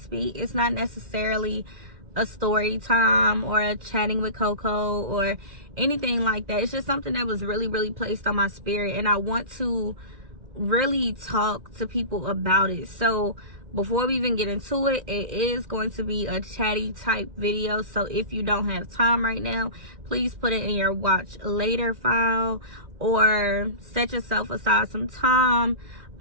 It's not necessarily a story time or a chatting with Coco or anything like that. It's just something that was really placed on my spirit, and I want to really talk to people about it. So before we even get into it, it is going to be a chatty type video. So if you don't have time right now, please put it in your watch later file or set yourself aside some time,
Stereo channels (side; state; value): left; late; 2.4 ms